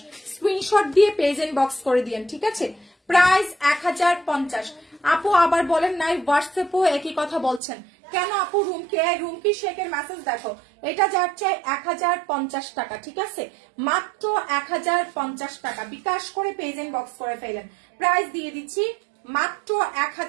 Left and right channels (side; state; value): left; drops out; at 7.6 s